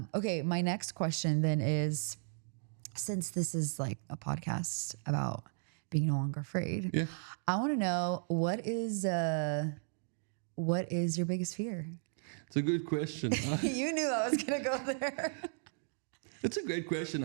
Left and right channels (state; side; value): silent; left; digital silence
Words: okay, my next question then is, since this is like a podcast about being no longer afraid, I want to know what is your biggest fear? It's a good question. You knew I was going to go there. It's a great question.